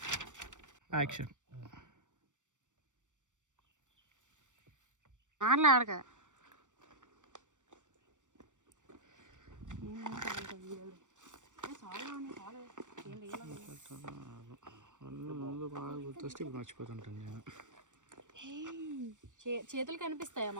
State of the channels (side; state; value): left; late; 0.86 ms